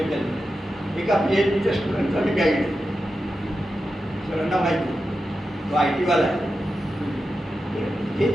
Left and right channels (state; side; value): normal; both; correlation 0.90